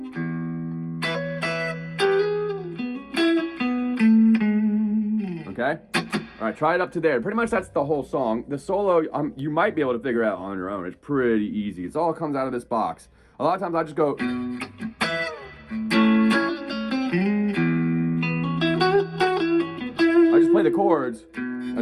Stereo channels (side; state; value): both; identical; correlation 1.00